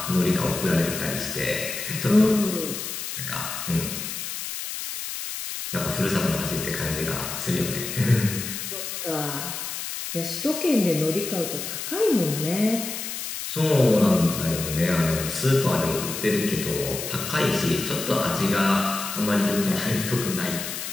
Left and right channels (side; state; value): left; noise; hiss, 6 dB below the sound